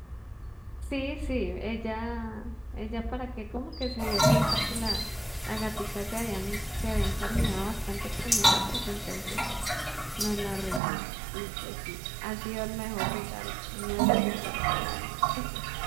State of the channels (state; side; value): drops out; left; at 10.8 s